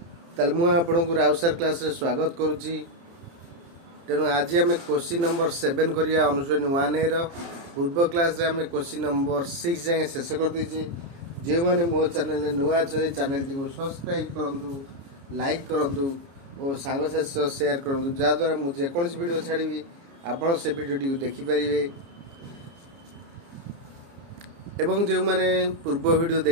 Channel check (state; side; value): late; left; 29 ms